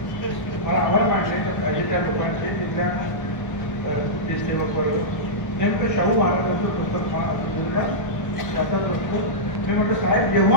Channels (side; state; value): right; late; 1.3 ms